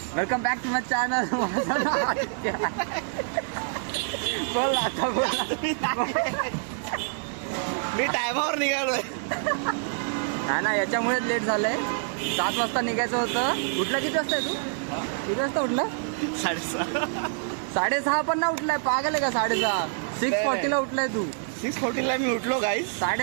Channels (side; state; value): left; silent; 61 dB below the other